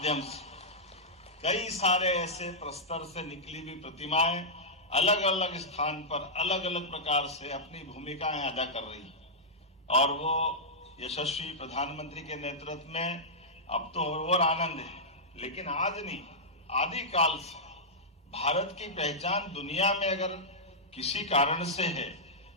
से कई सारे ऐसे प्रस्तर से निकली हुई प्रतिमाएं अलग अलग स्थान पर अलग अलग प्रकार से अपनी भूमिकाएं अदा कर रही और वो यशस्वी प्रधानमंत्री के नेतृत्व में अब तो और आनंद है। लेकिन आज नहीं, आदिकाल से भारत की पहचान दुनिया में अगर किसी कारण से है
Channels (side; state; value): both; normal; correlation -0.11